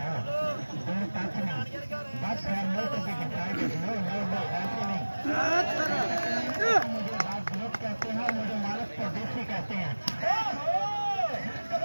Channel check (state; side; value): inverted; both; correlation -1.00